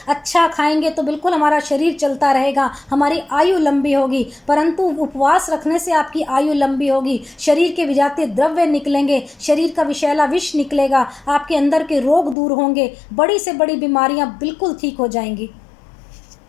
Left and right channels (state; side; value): drops out; right; at 12.4 s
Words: अच्छा खाएंगे तो बिल्कुल हमारा शरीर चलता रहेगा, हमारी आयु लंबी होगी। परंतु उपवास रखने से आपकी आयु लंबी होगी, शरीर के विजातीय द्रव्य निकलेंगे, शरीर का विषैला विष निकलेगा, आपके अंदर के रोग दूर होंगे, बड़ी से बड़ी बीमारियां बिल्कुल ठीक हो जाएंगी।